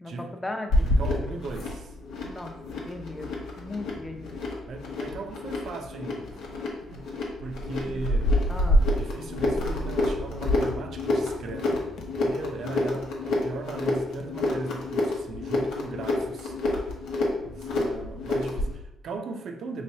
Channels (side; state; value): both; normal; correlation 0.73